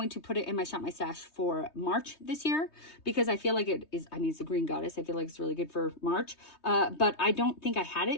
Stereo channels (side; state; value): right; late; 3.2 ms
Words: to put it in my Shop My Stash for March this year, because I feel like it is, I mean, it's the Green Goddess. I feel like it's really good for March. But I don't think I had